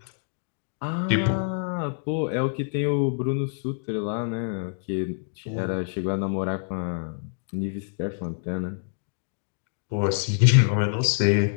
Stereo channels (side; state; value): right; silent; digital silence